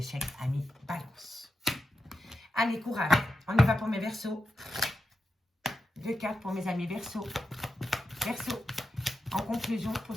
amis, balance. Allez, courage. On y va pour mes Verseaux. 2 cartes pour mes amis Verseaux. Verseaux. En conclusion pour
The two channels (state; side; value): normal; both; correlation 0.89